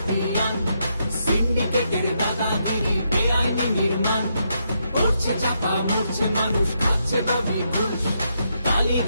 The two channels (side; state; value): both; inverted; correlation -0.79